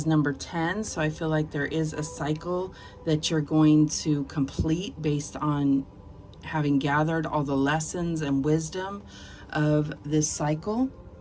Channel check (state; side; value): identical; both; correlation 1.00